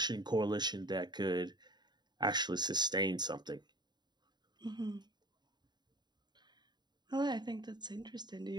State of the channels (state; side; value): late; left; 0.21 ms